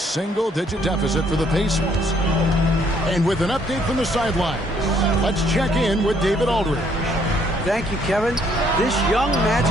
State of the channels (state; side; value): normal; both; correlation 0.66